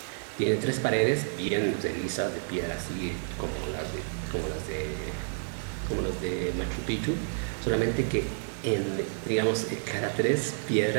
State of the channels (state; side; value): silent; left; digital silence